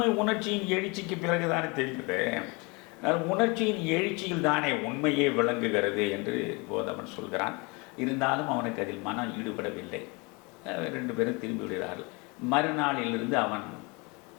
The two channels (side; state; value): right; quieter; 28.4 dB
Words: உணர்ச்சியின் எழுச்சிக்கு பிறகுதானே தெரியுது. உணர்ச்சியின் எழுச்சியில் தானே உண்மையே விளங்குகிறது என்று கோதமன் சொல்கிறான். இருந்தாலும் அவனுக்கு அதில் மனம் ஈடுபடவில்லை. 2 பேரும் திரும்பி விடுகிறார்கள். மறுநாளிலிருந்து அவன்